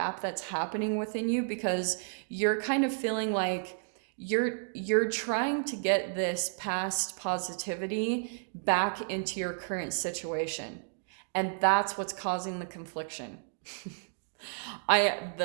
that's happening within you because you're kind of feeling like you're trying to get this past positivity back into your current situation. And that's what's causing the confliction.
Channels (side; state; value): left; silent; digital silence